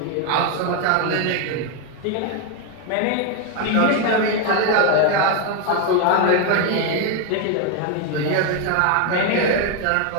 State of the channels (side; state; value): both; different; correlation 0.01